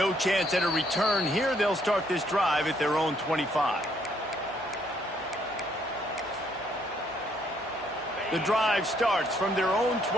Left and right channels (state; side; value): noise; right; hum, 26 dB below the sound